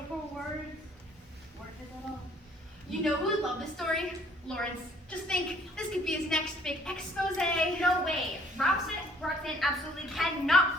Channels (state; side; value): normal; both; correlation 0.60